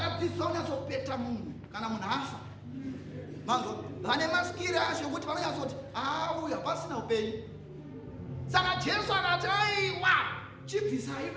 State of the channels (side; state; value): both; identical; correlation 1.00